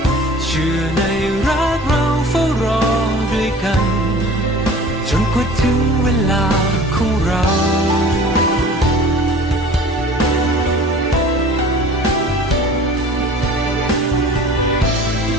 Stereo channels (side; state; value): both; normal; correlation 0.44